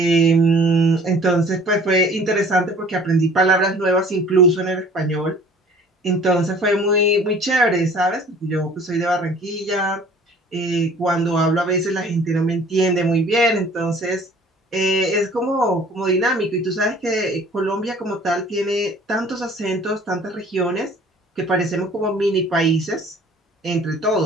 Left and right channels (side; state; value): both; normal; correlation 0.51